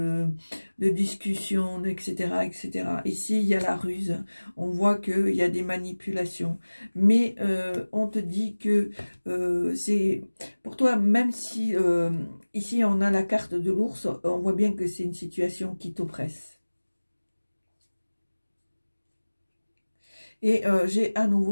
discussions, etc., etc. Ici, il y a la ruse. On voit qu'il y a des manipulations. Mais on te dit que c'est... Pour toi, même si ici, on a la carte de l'ours, on voit bien que c'est une situation qui t'oppresse. Et j'ai à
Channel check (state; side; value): inverted; both; correlation -1.00